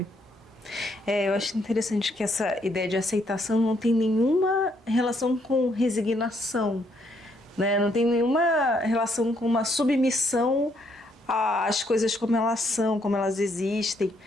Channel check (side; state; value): both; normal; correlation 0.72